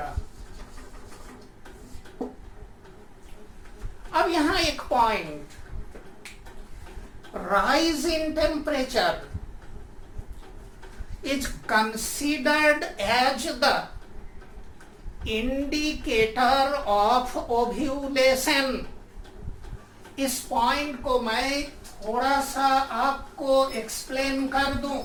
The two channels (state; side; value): identical; both; correlation 1.00